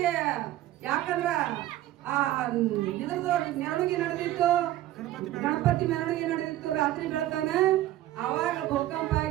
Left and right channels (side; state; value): left; quieter; 14.4 dB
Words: ಯಾಕಂದ್ರ ಇದ್ರದ್ದು ಮೆರವಣಿಗೆ ನಡೆದಿತ್ತು ಗಣಪತಿ ಮೆರವಣಿಗೆ ನಡೆದಿತ್ತು ರಾತ್ರಿ ಬೆಳತಾನ ಅವಾಗ ಭೂಕಂಪ